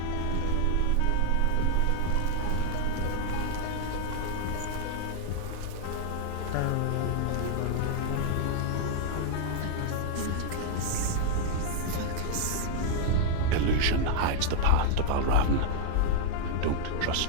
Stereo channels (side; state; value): both; different; correlation 0.00